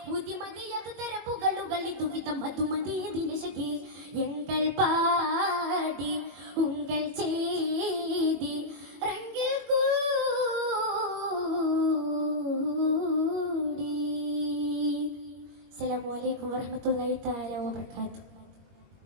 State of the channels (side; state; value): left; late; 21 ms